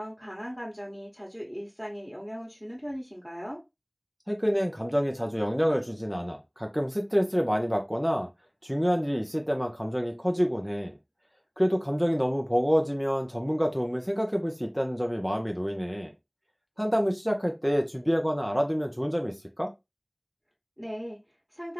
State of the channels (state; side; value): identical; both; correlation 1.00